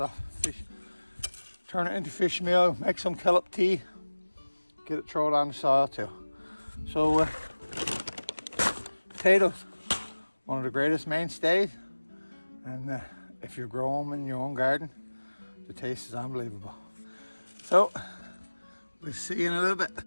turn it into fish meal, make some kelp tea, get it thrown on the soil too. So potatoes, one of the greatest mainstays, and if you grow them in your own garden, the taste is unbelievable. So we'll see you in a little bit.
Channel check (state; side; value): inverted; both; correlation -1.00